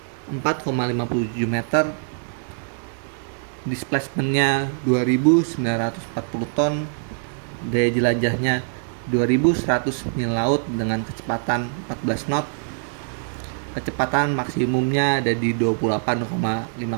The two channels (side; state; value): left; silent; 63 dB below the other